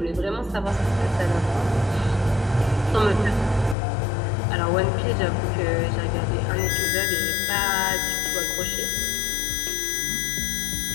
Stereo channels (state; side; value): drops out; right; at 3.8 s